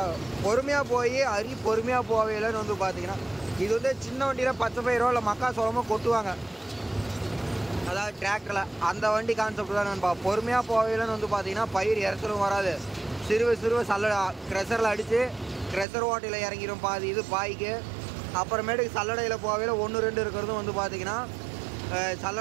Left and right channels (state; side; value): drops out; left; at 15.9 s